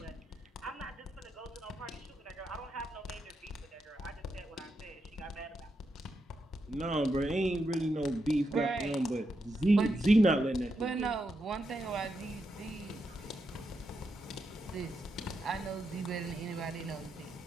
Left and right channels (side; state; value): both; normal; correlation 0.84